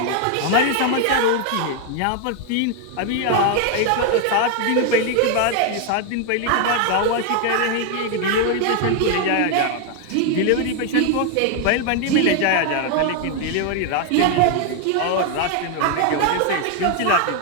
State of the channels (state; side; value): different; both; correlation 0.00